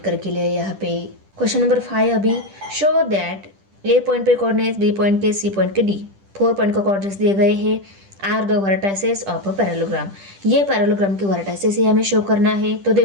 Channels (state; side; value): late; left; 10 ms